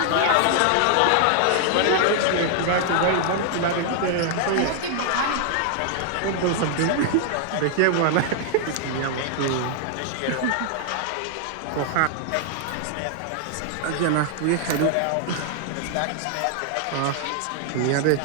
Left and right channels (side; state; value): both; different; correlation 0.00